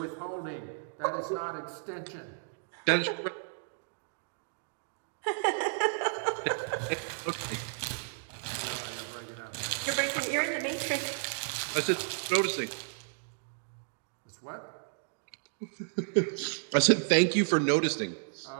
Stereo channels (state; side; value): silent; left; digital silence